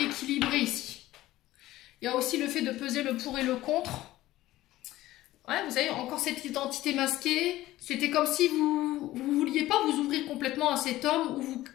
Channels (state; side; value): quieter; right; 16.0 dB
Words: équilibré ici. Il y a aussi le fait de peser le pour et le contre. Ouais, vous avez encore cette identité masquée. C'était comme si vous ne vouliez pas vous ouvrir complètement à cet homme ou vous